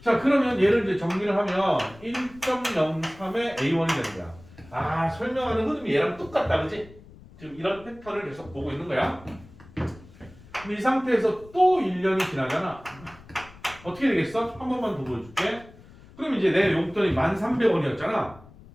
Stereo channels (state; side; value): noise; left; rumble, 22 dB below the sound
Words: 자, 그러면 얘를 이제 정리를 하면 1.03의 A1이 되는 거야. 아, 설명하는 흐름이 얘랑 똑같다, 그지? 지금 이런 패턴을 계속 보고 있는 거야. 근데 이 상태에서 또 1년이 지나잖아. 어떻게 되겠어? 한 번만 더 보여줄게. 그럼 이제 내 용돈이 1,300원이었잖아.